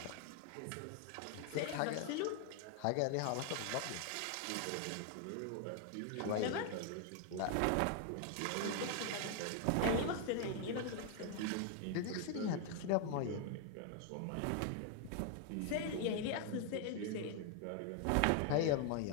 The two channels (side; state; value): both; different; correlation 0.00